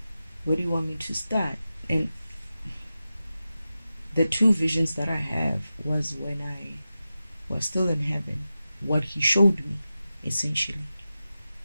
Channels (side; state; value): both; inverted; correlation -0.93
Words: where do you want me to start? And the two visions that I have was when I was still in heaven, what he showed me, essentially.